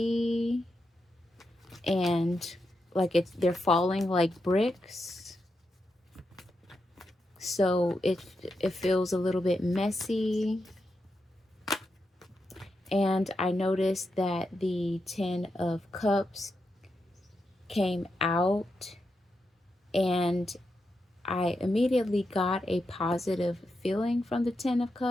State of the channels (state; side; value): normal; both; correlation 0.86